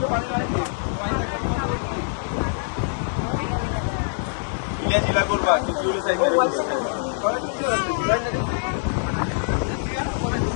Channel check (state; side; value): silent; right; digital silence